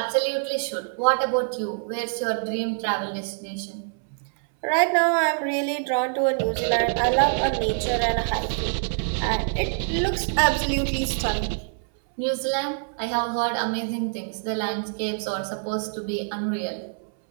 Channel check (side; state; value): left; silent; 62 dB below the other